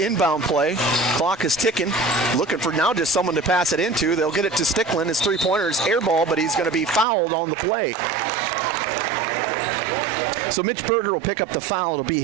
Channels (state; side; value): drops out; left; at 7.1 s